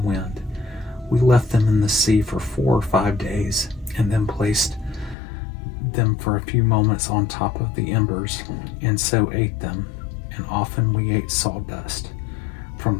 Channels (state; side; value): drops out; right; at 5.2 s